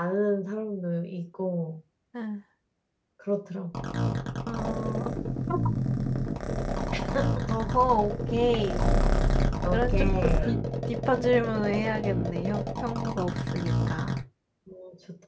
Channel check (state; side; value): identical; both; correlation 1.00